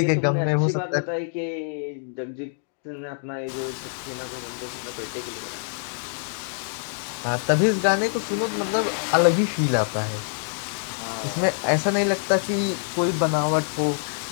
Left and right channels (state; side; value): silent; right; digital silence